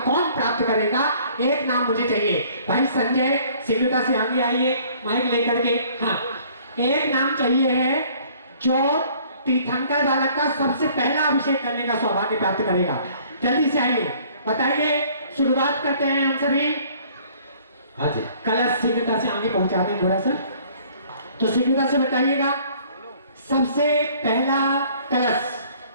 प्राप्त करेगा? एक नाम मुझे चाहिए। भाई संजय सिंगुटा से आगे आइए माइक लेकर के। हाँ, एक नाम चाहिए है जो तीर्थंकर बालक का सबसे पहला अभिषेक करने का सौभाग्य प्राप्त करेगा। जल्दी से आइए, बताइए। शुरुआत करते हैं हम सभी। हाँ जी, कलश सिंगुटा से आगे पहुंचा दें थोड़ा सा, तो सिंगुटा से बताइएगा सबसे पहला कलश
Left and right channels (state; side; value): inverted; both; correlation -0.56